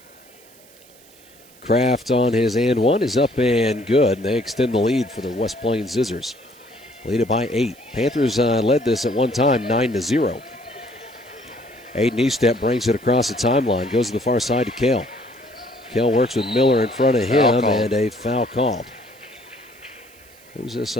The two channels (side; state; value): right; noise; hiss, 26 dB below the sound